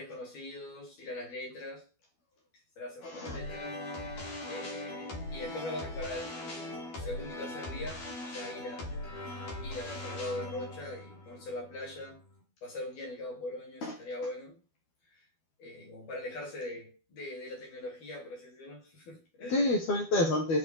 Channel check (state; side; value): late; right; 12 ms